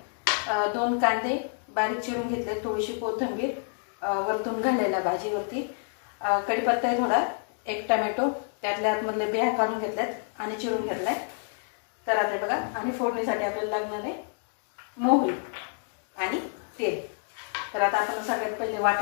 2 कांदे बारीक चिरून घेतले, थोडीशी कोथिंबीर वरतून घालायला भाजीवरती, कढीपत्ता आहे थोडा, 1 टोमॅटो त्यातल्या आतमधले बिया काढून घेतल्यात आणि चिरून घेतलाय। तर आता बघा, आणि फोडणीसाठी आपल्याला लागणार आहे मोहरी आणि तेल। तर आता आपण सगळ्यात पहिले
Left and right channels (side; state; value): right; silent; 59 dB below the other